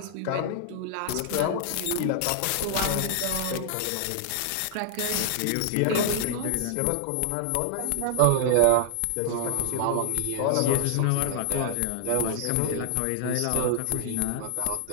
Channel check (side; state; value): both; different; correlation -0.01